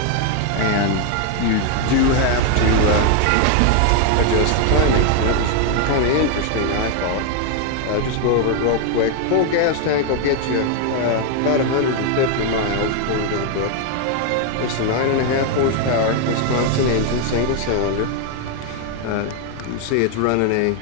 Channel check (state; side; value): different; both; correlation 0.01